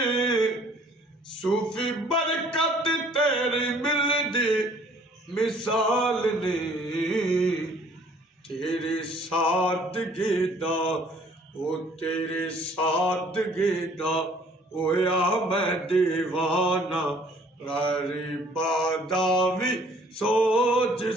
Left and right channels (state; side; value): normal; both; correlation 0.57